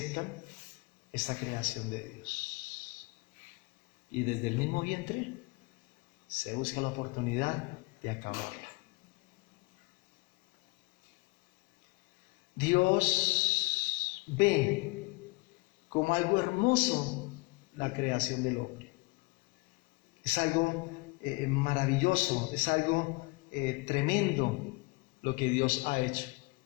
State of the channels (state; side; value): quieter; right; 26.4 dB